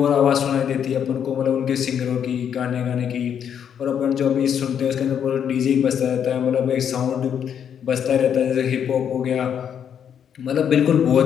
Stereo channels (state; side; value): quieter; right; 8.5 dB